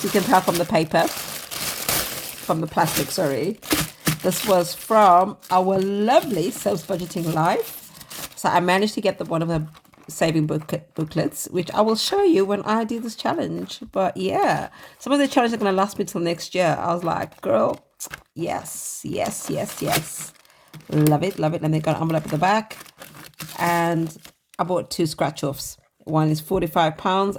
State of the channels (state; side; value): identical; both; correlation 1.00